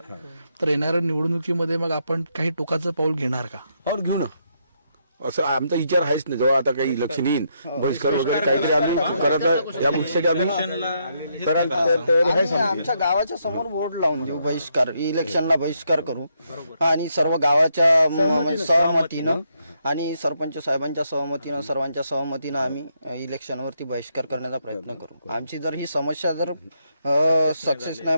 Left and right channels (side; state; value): both; inverted; correlation -0.77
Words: तर येणाऱ्या निवडणुकीमध्ये मग आपण काही टोकाचं पाऊल घेणार का? पाऊल घेऊ ना, असं आमचा विचार आहेच नाही. जेव्हा आता काही इलेक्शन येईल, बहिष्कार वगैरे काहीतरी आम्ही करत या गोष्टीसाठी आमच्या गावाच्या समोर बोर्ड लावून देऊ, बहिष्कार, इलेक्शनला बहिष्कार करू. आणि सर्व गावाच्या सहमतीनं आणि सरपंच साहेबांच्या सहमतीनं, सर्वांच्या सहमतीनं आम्ही इलेक्शनवरती बहिष्कार करण्याचा प्रयत्न करू. आमची जर ही समस्या जर सक्सेस नाही,